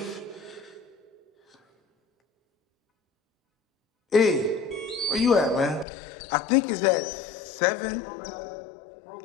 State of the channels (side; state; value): right; drops out; at 5.9 s